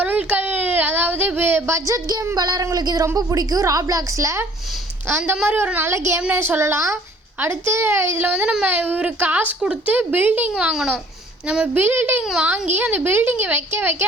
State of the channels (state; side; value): normal; both; correlation 0.55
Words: அதாவது பட்ஜெட் கேம் விளையாடுறவங்களுக்கு இது ரொம்ப பிடிக்கும். ராப்ளாக்ஸில் அந்த மாதிரி ஒரு நல்ல கேம்னே சொல்லலாம். அடுத்து இதில் நம்ம ஒரு காசு கொடுத்து பில்டிங் வாங்கணும். நம்ம பில்டிங் வாங்கி அந்த பில்டிங்கை வைக்க